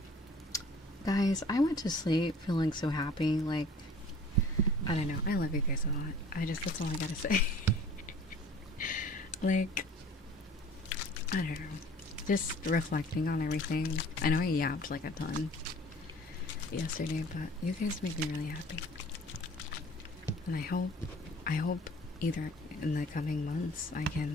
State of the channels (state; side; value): normal; both; correlation 0.48